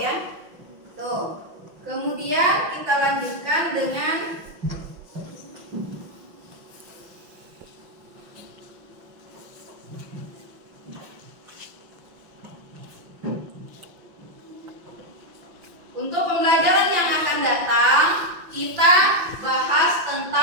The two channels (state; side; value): late; left; 5.8 ms